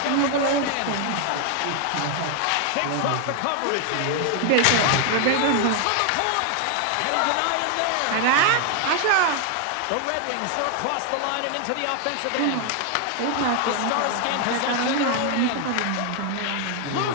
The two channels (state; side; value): different; both; correlation 0.00